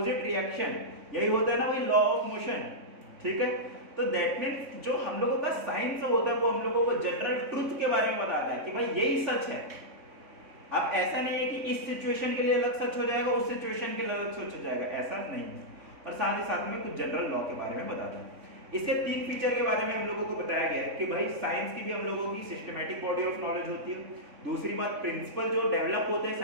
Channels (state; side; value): late; left; 3.6 ms